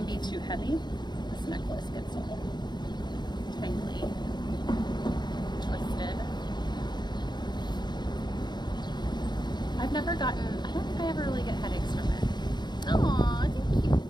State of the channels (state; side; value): late; right; 0.21 ms